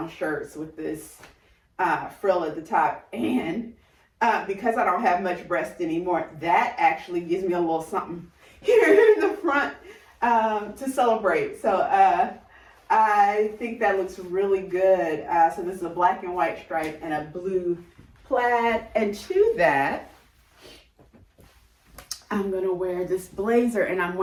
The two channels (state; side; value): identical; both; correlation 1.00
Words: shirts with this frill at the top. And because I don't have much breast anymore, that actually gives me a little something here in the front to celebrate. So I think that looks really good. So this is a black and white stripe and a blue plaid. And to that, I'm gonna wear this blazer, and I'm